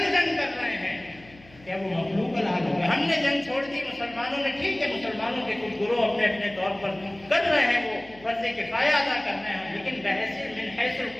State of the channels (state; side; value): noise; left; hum, 24 dB below the sound